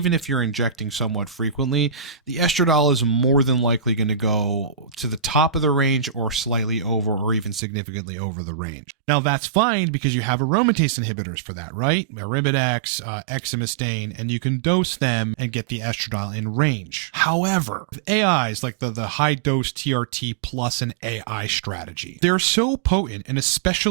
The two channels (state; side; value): drops out; left; at 7.6 s